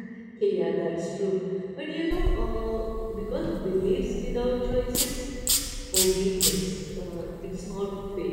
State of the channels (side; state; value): both; identical; correlation 1.00